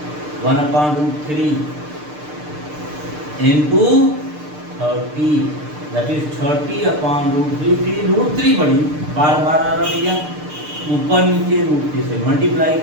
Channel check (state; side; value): late; left; 6.7 ms